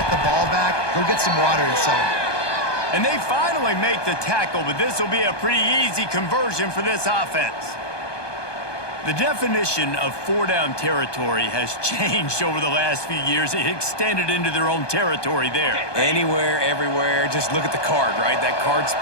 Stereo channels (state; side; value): late; right; 1.2 ms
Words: the ball back. Go get some water and celebrate. And they finally make the tackle, but this will be a pretty easy conversion for this offense. The definition of 4-down territory has changed over the last few years. It extended into their own territory there. Anywhere, everywhere, just look at the card, right? That card's